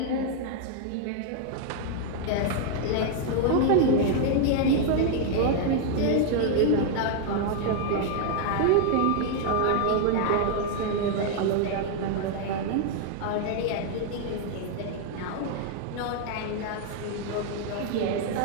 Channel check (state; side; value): different; both; correlation 0.00